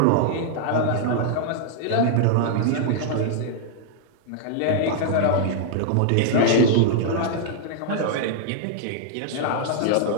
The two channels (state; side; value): different; both; correlation -0.01